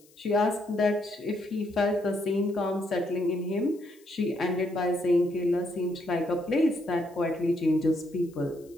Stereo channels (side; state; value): left; noise; hiss, 29 dB below the sound